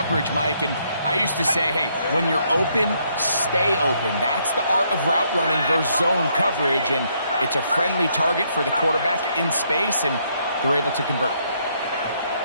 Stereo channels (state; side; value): inverted; both; correlation -0.72